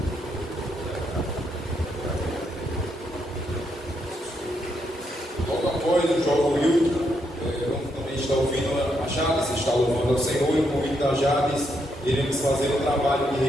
Logo após o jovem Will, também está ouvindo a Jades, está louvando ao Senhor, e com o convite da Jades, iremos fazer um trabalho de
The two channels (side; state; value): both; normal; correlation 0.78